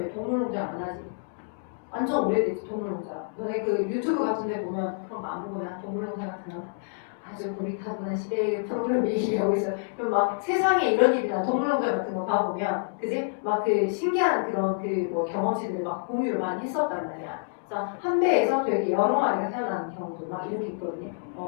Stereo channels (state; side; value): silent; right; digital silence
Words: 동물농장 안 하지? 완전 오래됐지 동물농장. 너네 그 유튜브 같은 데 보면 그런 거 안 보거나 동물농장 같은 거 아주 고리타분한 시대의 프로그램 얘기하고 있어요. 그럼 막 세상에 이런 일이나 동물농장 같은 거 봐보면, 그지? 막 그 신기한 그런 경험치들을 막 공유를 많이 했었단 말이야. 그래서 한 배에서 되게 여러 마리가 태어나는 경우도 막 이렇게 있거든요.